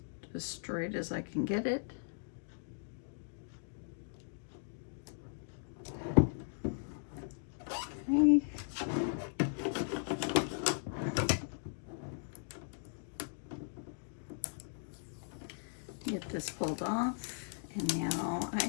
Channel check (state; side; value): silent; right; digital silence